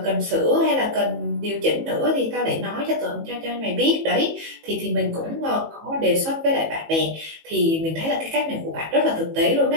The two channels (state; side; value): late; left; 18 ms